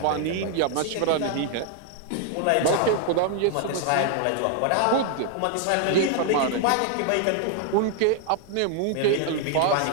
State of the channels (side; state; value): both; different; correlation 0.00